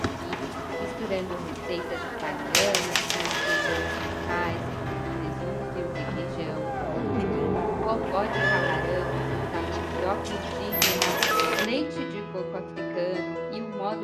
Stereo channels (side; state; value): both; identical; correlation 1.00